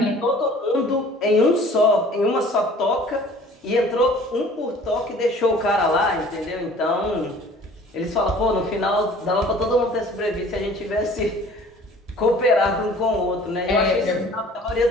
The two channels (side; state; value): both; normal; correlation 0.49